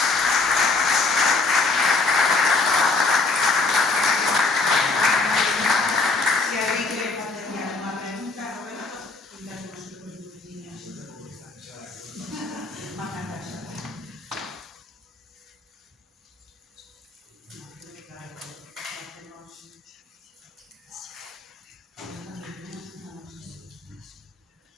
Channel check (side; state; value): right; quieter; 3.8 dB